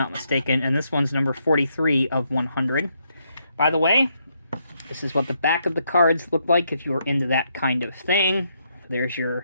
mistaken. And this one's number 43 of 100. By the way, this is what the back of the cards look like if you are into that kind of thing. There's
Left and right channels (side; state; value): both; inverted; correlation -0.77